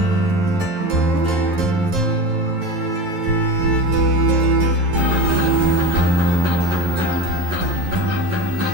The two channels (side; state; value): left; late; 11 ms